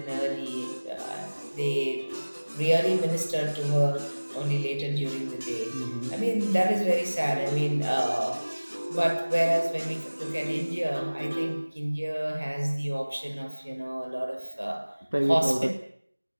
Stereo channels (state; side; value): inverted; both; correlation -1.00